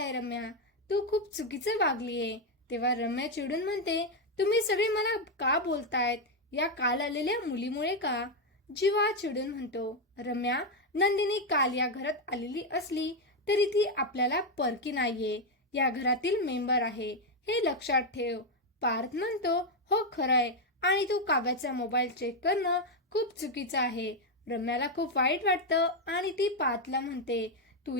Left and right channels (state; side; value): normal; both; correlation 0.04